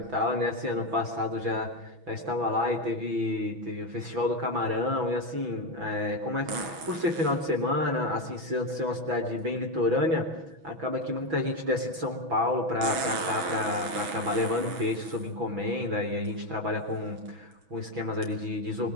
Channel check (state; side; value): late; left; 6.3 ms